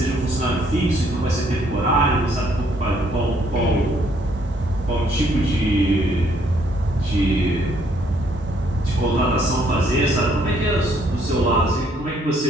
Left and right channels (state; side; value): normal; both; correlation 0.67